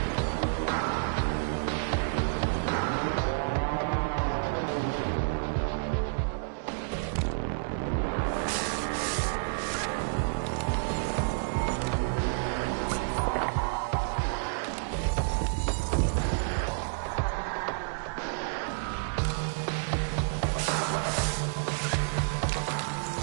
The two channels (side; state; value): left; silent; digital silence